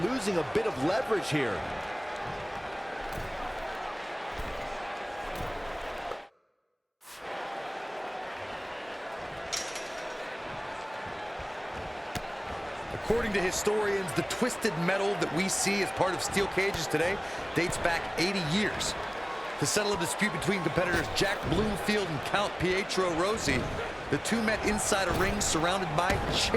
losing a bit of leverage here. According to historians, the twisted metal that we see as part of steel cages today dates back 80 years. To settle a dispute between competitors Jack Bloomfield and Count Pietro Rossi, the two met inside a ring surrounded by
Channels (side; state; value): both; identical; correlation 1.00